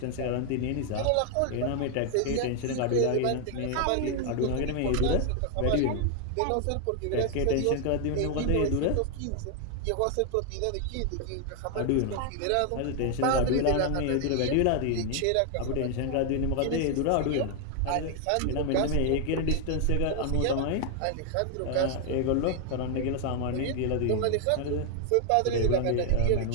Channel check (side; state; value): both; different; correlation 0.00